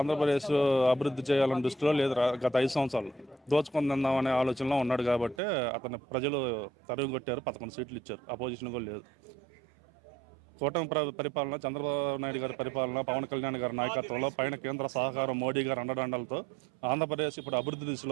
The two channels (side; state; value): left; drops out; at 5.4 s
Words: అభివృద్ధి చేయాలని దృష్టిలో లేదు. గత 5 సంవత్సరాలు దోచుకుందామనే ఆలోచనలో ఉన్నాడు కాబట్టి అతను ప్రజలు తరుగు కొట్టారు. 11 సీట్లు ఇచ్చారు. అపోజిషన్ కూడా లేదు. కూటమి పరిపాలన, చంద్రబాబు నాయుడు గారి పరిపాలన, పవన్ కళ్యాణ్ గారి నాయకత్వంలో పైన కేంద్ర సహకారం, మోడీ గారి అండదండలతో ఆంధ్రప్రదేశ్ ఇప్పుడు అభివృద్ధి